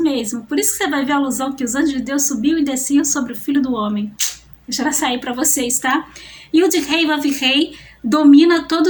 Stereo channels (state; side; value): identical; both; correlation 1.00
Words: mesmo. Por isso que você vai ver a alusão que os anjos de Deus subiam e desciam sobre o Filho do Homem. Deixa ela sair para vocês, tá? E o de rei Vav-rei domina